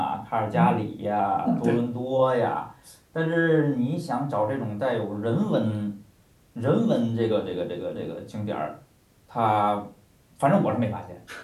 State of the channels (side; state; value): both; identical; correlation 1.00